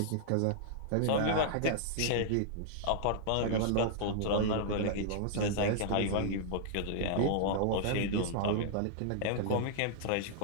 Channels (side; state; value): both; different; correlation -0.01